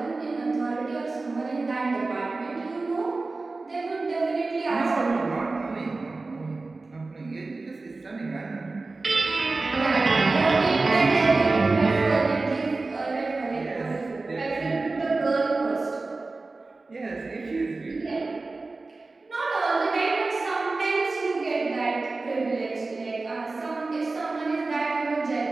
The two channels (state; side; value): quieter; left; 3.5 dB